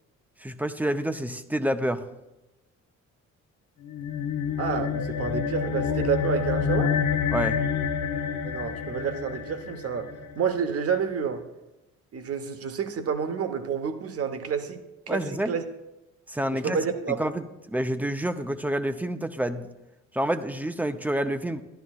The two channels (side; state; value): both; normal; correlation 0.31